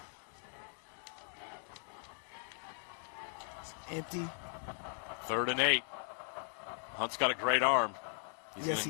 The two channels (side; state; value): right; silent; 52 dB below the other